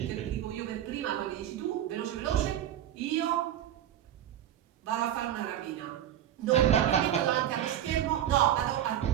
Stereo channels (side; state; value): left; quieter; 11.2 dB